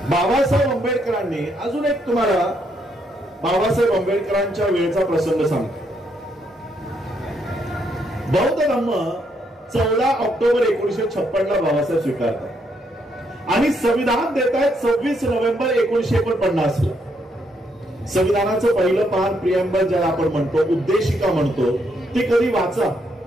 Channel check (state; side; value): normal; both; correlation 0.75